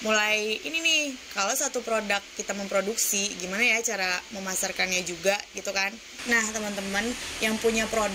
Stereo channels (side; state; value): both; identical; correlation 1.00